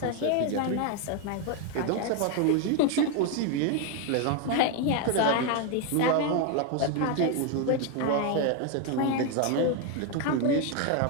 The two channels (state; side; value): different; both; correlation 0.01